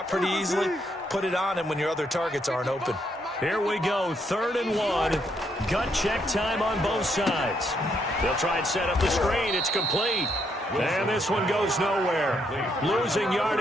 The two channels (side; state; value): both; normal; correlation 0.75